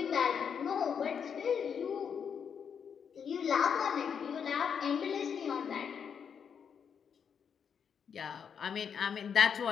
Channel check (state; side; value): quieter; right; 7.2 dB